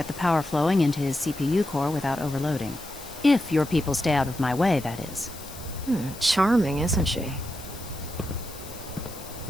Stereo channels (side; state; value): left; noise; hiss, 15 dB below the sound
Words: the power flowing into his CPU core without overloading. If your people stay out of my way, that is. Charming, isn't she?